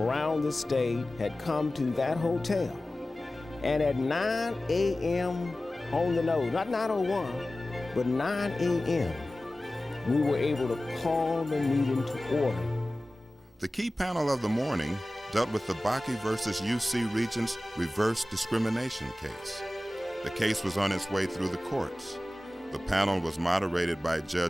around the state had come to that hotel. And at 9 a.m. on the nose, not 9:01, but 9 a.m., we were able to call the meeting to order. The key panel of the morning dealt with the Bakke versus UC Regents reverse discrimination case. The case was on its way through the courts. The panel was moderated by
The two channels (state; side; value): normal; both; correlation 0.96